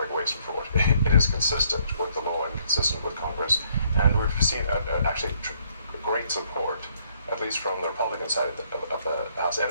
waste and fraud. It is consistent with the law and consistent with Congress. And we've seen actually great support, at least from the Republican side of the House, and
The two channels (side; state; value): both; inverted; correlation -0.67